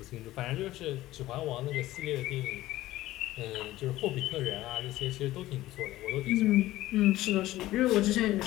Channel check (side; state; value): right; quieter; 16.0 dB